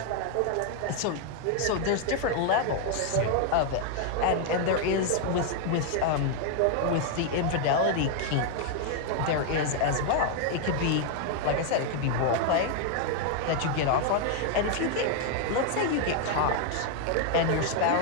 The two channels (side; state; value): both; different; correlation 0.00